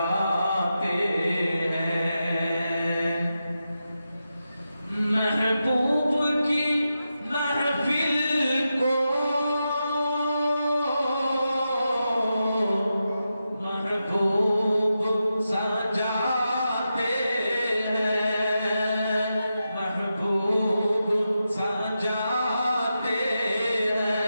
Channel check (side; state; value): both; inverted; correlation -0.89